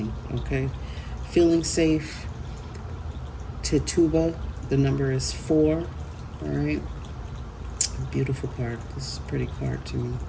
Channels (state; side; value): identical; both; correlation 1.00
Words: Okay. Feeling safe. Tituba. The number is 4. All right. Beautiful card. This is a pretty card to me.